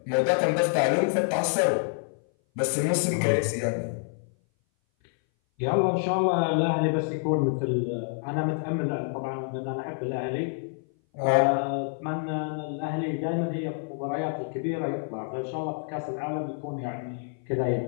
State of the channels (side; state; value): right; silent; 58 dB below the other